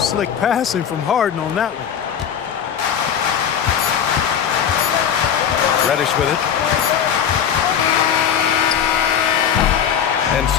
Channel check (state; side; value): quieter; right; 8.5 dB